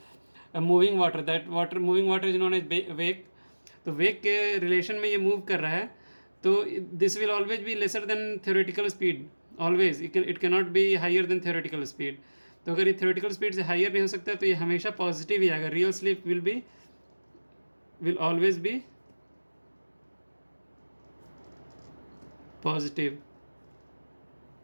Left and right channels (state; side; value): inverted; both; correlation -1.00